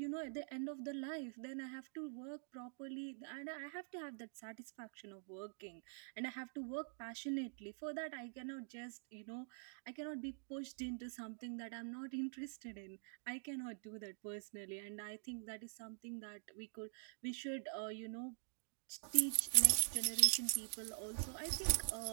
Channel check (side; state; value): left; silent; digital silence